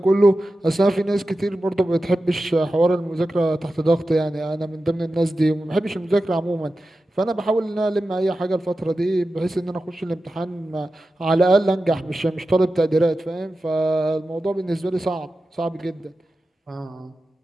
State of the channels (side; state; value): both; normal; correlation 0.93